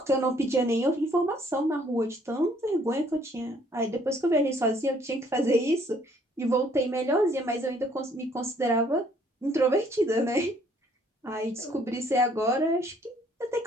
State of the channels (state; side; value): normal; both; correlation 0.63